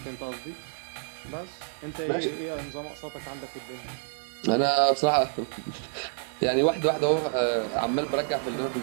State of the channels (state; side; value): silent; left; digital silence